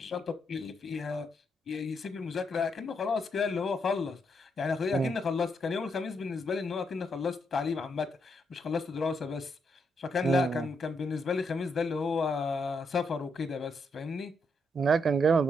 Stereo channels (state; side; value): normal; both; correlation 0.78